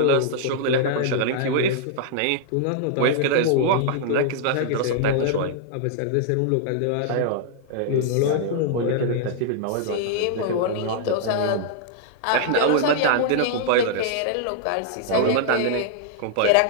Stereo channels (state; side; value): different; both; correlation -0.01